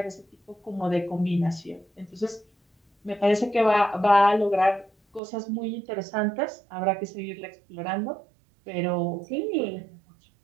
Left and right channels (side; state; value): left; drops out; at 5.2 s